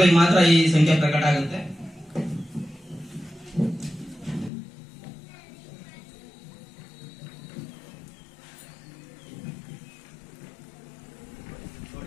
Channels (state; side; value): drops out; right; at 4.5 s